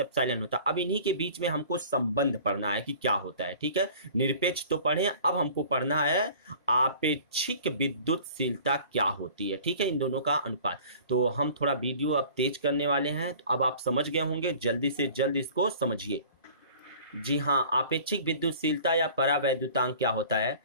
होता। अब इन्हीं के बीच में हमको संबंध पढ़ना है कि क्या होता है, ठीक है। निरपेक्ष तो पढ़े, अब हमको पढ़ना है आपेक्षिक विद्युतशीलता क्या होती है, ठीक है, इन दोनों का अनुपात। तो हम थोड़ा वीडियो अब तेज करने वाले हैं, तो अब आप समझ गए होंगे, जल्दी से जल्द इसको समझिए। जी हाँ, आपेक्षिक विद्युतशीलता या परावैद्युतांक क्या होता है,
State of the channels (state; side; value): inverted; both; correlation -0.46